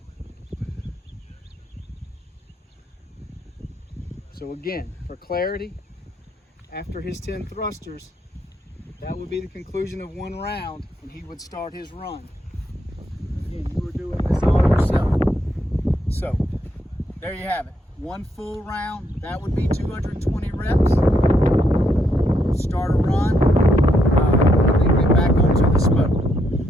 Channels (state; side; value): normal; both; correlation 0.77